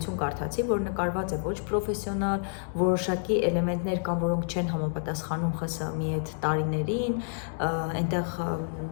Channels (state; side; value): silent; right; digital silence